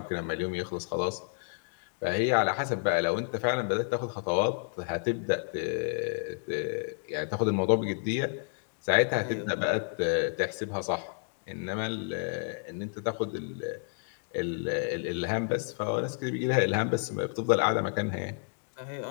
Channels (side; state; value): right; silent; 57 dB below the other